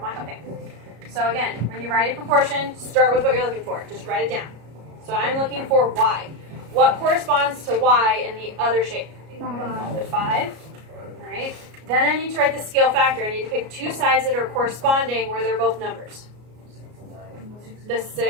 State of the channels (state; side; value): late; left; 33 ms